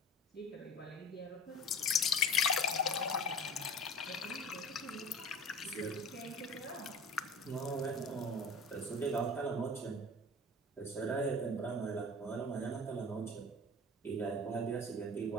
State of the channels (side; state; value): both; normal; correlation 0.38